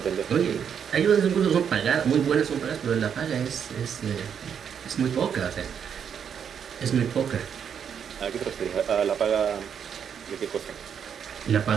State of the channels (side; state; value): left; quieter; 7.8 dB